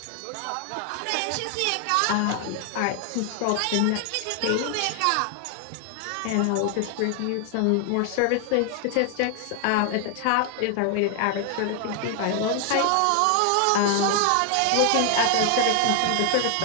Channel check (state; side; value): different; both; correlation 0.00